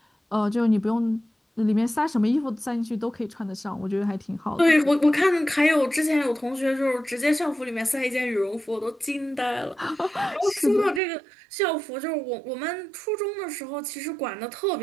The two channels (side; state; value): left; drops out; at 11.0 s